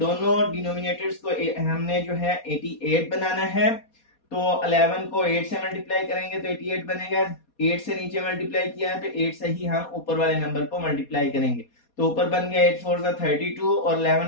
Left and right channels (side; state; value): right; late; 4.2 ms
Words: डिनोमिनेटर्स को हमने जो है 88 बनाना है। तो 11 को 8 से मल्टीप्लाई करेंगे तो 88 बनेगा। 8 से नीचे मल्टीप्लाई किया है तो 8 से ही हम ऊपर वाले नंबर को मल्टीप्लाई करेंगे। तो ऊपर बन गया 8 4 32 और